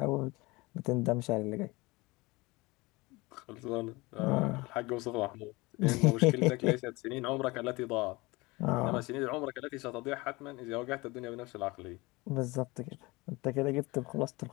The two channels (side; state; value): right; quieter; 23.3 dB